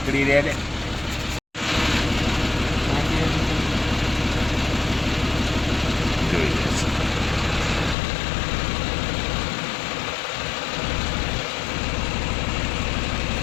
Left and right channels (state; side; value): drops out; right; at 8.0 s